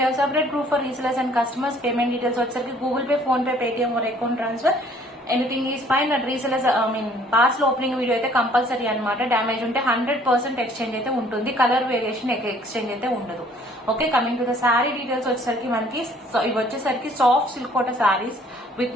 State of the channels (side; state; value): both; normal; correlation 0.58